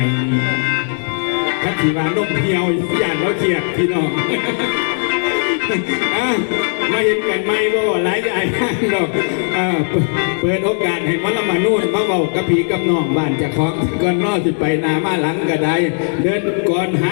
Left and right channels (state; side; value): silent; right; 68 dB below the other